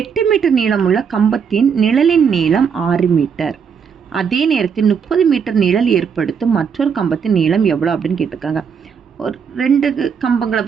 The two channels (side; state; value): left; quieter; 6.7 dB